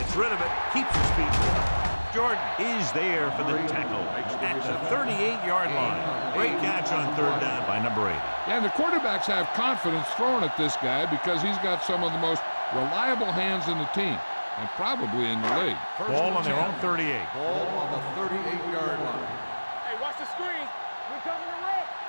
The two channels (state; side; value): inverted; both; correlation -1.00